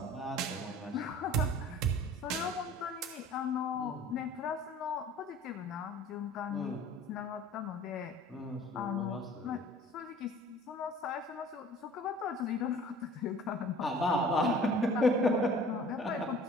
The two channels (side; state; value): both; normal; correlation 0.48